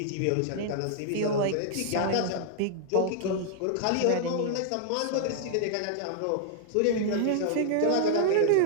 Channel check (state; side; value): different; both; correlation -0.01